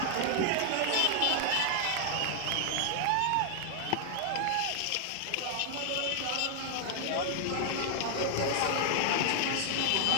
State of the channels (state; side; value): different; both; correlation 0.00